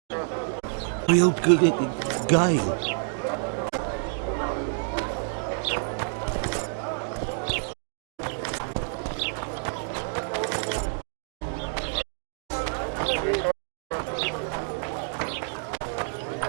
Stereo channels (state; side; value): silent; left; digital silence